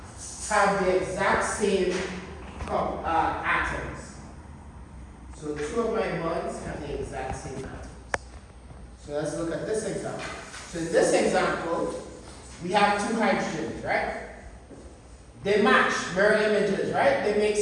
have the exact same atoms. So 2 of my bonds have the exact same atoms. So let's look at this example. So in this example, we have 2 hydrogens, right? They match, mirror images, right? They make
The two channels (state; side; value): identical; both; correlation 1.00